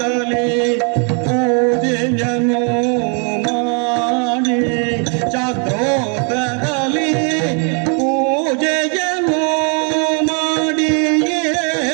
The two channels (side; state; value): left; quieter; 39.3 dB